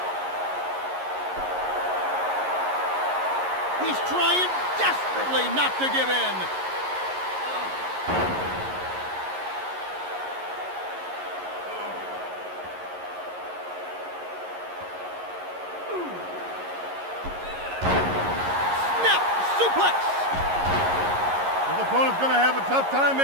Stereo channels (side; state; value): left; late; 11 ms